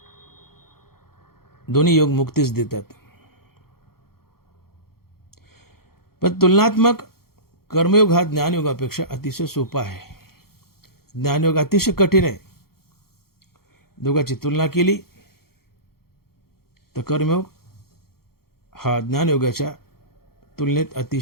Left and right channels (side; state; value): right; late; 0.94 ms